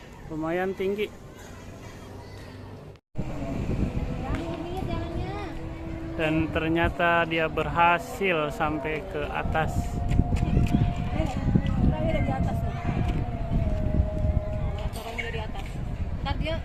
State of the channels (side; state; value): both; identical; correlation 1.00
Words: Lumayan tinggi. Dan ternyata dia berhasil sampai ke atas. Di atas nih. Caranya dari atas. Ntar dia